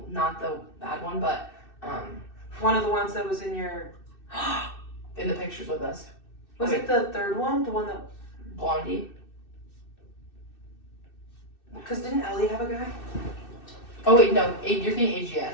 the bad one, but, one of the ones that was in your... in the pictures with us. Was it the third one? The one that... Blondie. Because didn't Ellie have a guy? Oh wait, no, you're thinking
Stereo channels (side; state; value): right; late; 2.6 ms